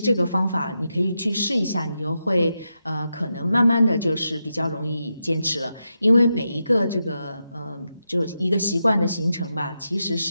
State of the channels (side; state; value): both; inverted; correlation -0.87